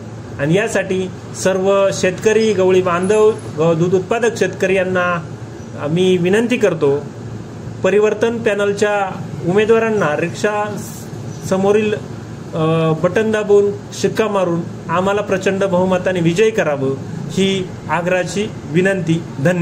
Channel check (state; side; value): identical; both; correlation 1.00